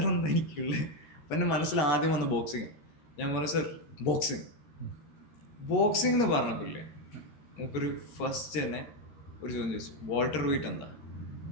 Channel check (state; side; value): late; right; 13 ms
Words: എന്താ എനിക്കുള്ളത്. അപ്പം എൻ്റെ മനസ്സിൽ ആദ്യം വന്ന് ബോക്സിങ്. ഞാൻ പറഞ്ഞു സർ ബോക്സിംഗ് എന്ന് പറഞ്ഞപ്പില്ലേ നമുക്കൊരു ഫസ്റ്റ് തന്നെ ഒരു ചോദ്യം ചോദിച്ചു, വാൾട്ടർ വെയിറ്റ് എന്താ?